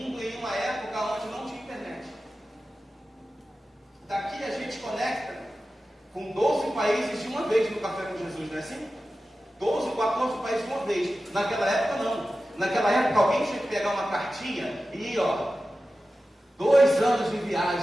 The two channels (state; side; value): normal; both; correlation 0.94